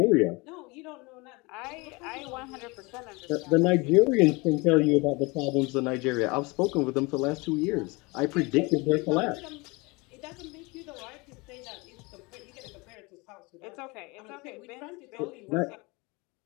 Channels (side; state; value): right; quieter; 26.1 dB